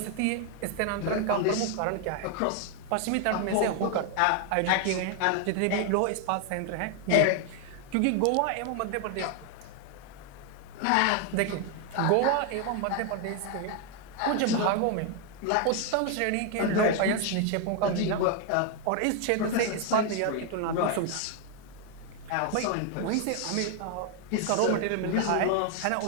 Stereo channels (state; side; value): different; both; correlation 0.01